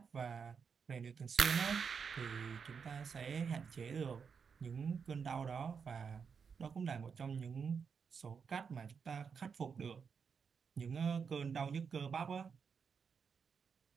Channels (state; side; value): quieter; left; 6.1 dB